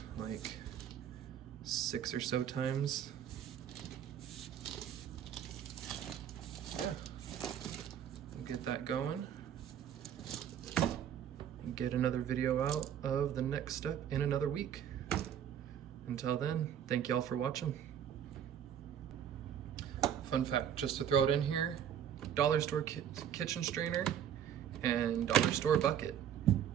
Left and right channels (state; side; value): quieter; left; 9.4 dB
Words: like 6 or so times. Yeah, we'll get that going. Get another video out of the next step in another week. Until then, thank y'all for watching. Fun fact, just to throw it in here, dollar store kitchen strainer and dollar store bucket.